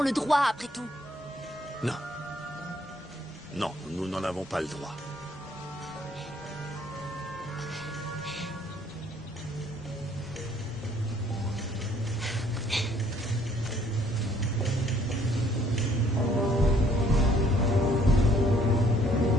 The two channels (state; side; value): normal; both; correlation 0.63